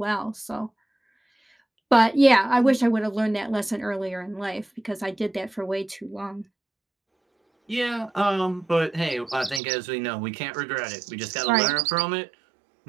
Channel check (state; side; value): drops out; left; at 9.6 s